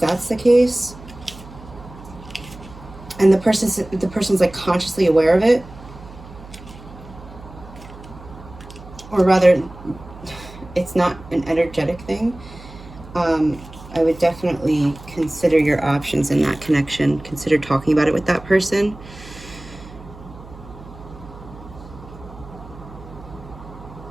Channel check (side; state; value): right; noise; hum, 17 dB below the sound